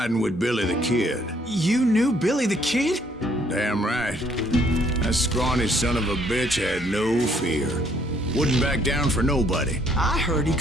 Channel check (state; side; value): normal; both; correlation 0.66